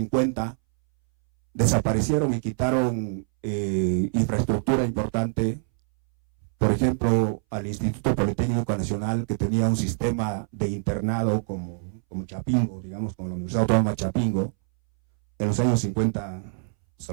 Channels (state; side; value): silent; left; 61 dB below the other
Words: desaparecieron y quitaron infraestructura importante. Por ejemplo, al Instituto Politécnico Nacional, que tenía un sistema de internado como Chapingo, digamos, como la Universidad Autónoma Chapingo, en los años 50 se